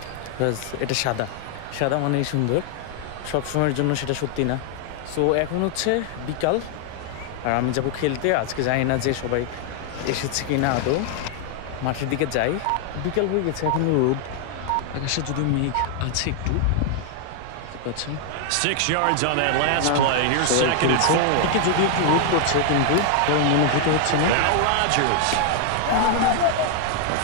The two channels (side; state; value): both; different; correlation 0.00